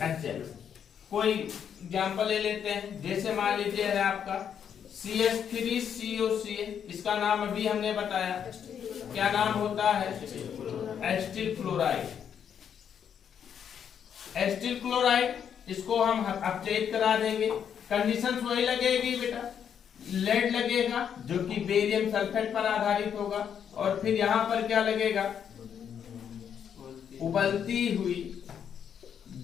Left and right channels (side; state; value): right; quieter; 8.3 dB